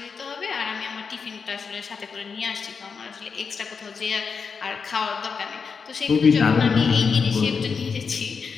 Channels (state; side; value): quieter; right; 5.6 dB